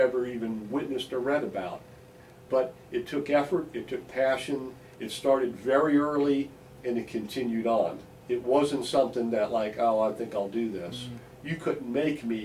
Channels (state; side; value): identical; both; correlation 1.00